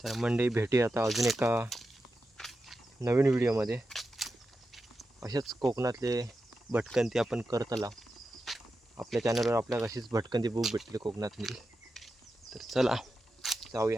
तर मंडळी भेटूया आता अजून एका नवीन व्हिडिओमध्ये. अशाच कोकणातले भटकंती आपण करतला. आपल्या चॅनलवर आपल्याला अशीच भटकंती बुक भेटली कोकणातली. तर चला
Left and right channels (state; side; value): normal; both; correlation 0.90